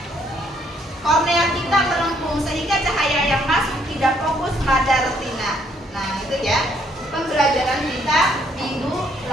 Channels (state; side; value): normal; both; correlation 0.68